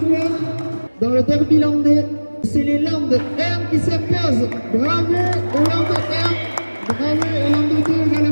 Dans le derby landais, c'est les Landes 1 qui s'imposent. Bravo aux Landes 1, bravo aux Landes 2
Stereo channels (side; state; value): both; inverted; correlation -1.00